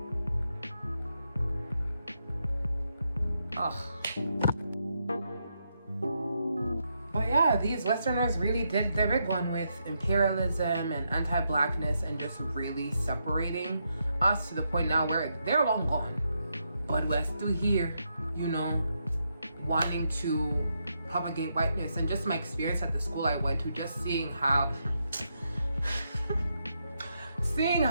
Ugh. But yeah, these Westerners really did their big one with imperialism and anti-Blackness and just really separating us to the point now where they're long gone. But we're still here, you know, wanting to propagate whiteness. And just my experience at the school I went to, just seeing how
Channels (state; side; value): inverted; both; correlation -0.81